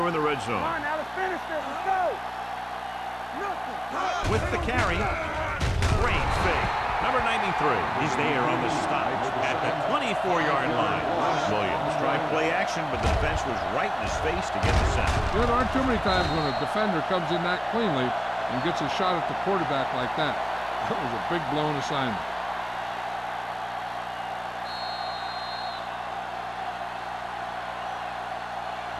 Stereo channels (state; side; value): identical; both; correlation 1.00